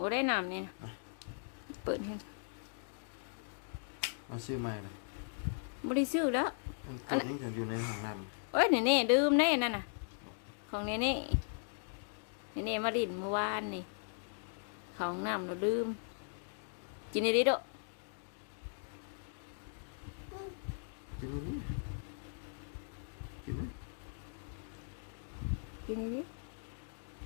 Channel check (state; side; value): silent; right; digital silence